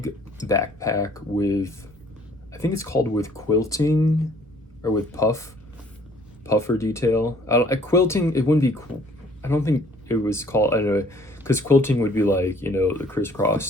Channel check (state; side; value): normal; both; correlation 0.58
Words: backpack with, I think it's called with quilting or with puffer detail. Quilting, it wouldn't be, I don't think it was called, I don't know, because quilting would be like, the crisscross.